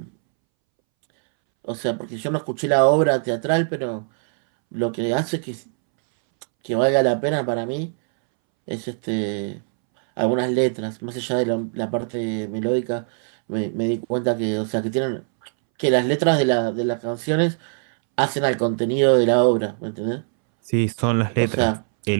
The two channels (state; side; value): silent; left; 64 dB below the other